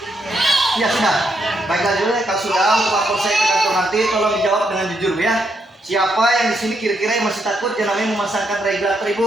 Iya sudah. Baiklah juga kalau sudah untuk lapor saya ke kantor nanti tolong dijawab dengan jujur Bu ya. Siapa yang di sini kira-kira yang masih takut yang namanya memasangkan regulator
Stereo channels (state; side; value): normal; both; correlation 0.78